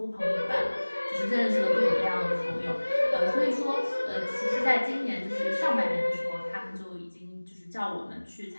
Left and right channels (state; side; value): inverted; both; correlation -1.00